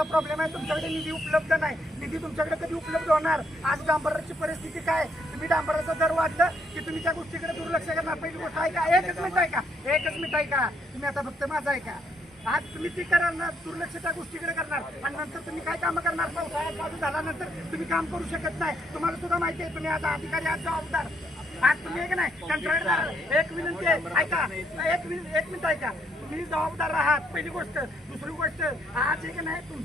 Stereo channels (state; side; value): normal; both; correlation 0.73